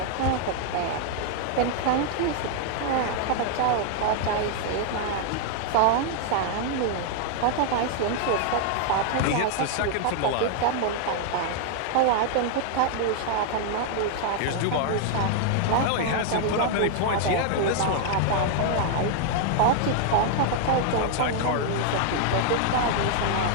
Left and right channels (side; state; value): both; different; correlation 0.00